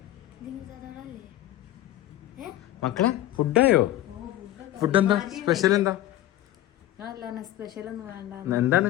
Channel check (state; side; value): quieter; right; 14.2 dB